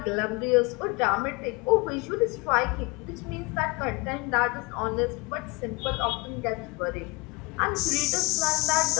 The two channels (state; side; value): quieter; right; 26.5 dB